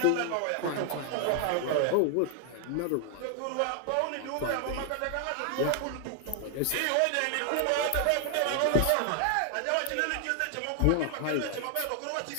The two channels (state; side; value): different; both; correlation 0.00